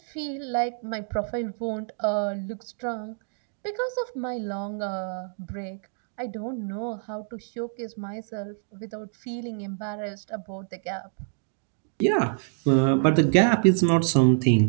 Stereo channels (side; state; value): left; silent; digital silence